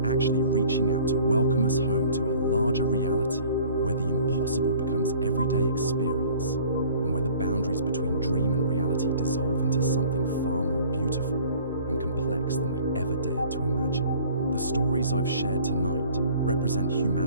actually reaching out to welcome us home to a larger reality where the impossible becomes everyday experience and where the boundaries between dream and reality dissolve into something far more beautiful and complex than we ever dared to imagine. The stories I've shared tonight represent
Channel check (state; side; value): inverted; both; correlation -0.50